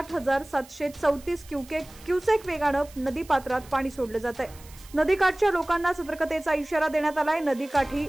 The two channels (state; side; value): noise; right; hiss, 22 dB below the sound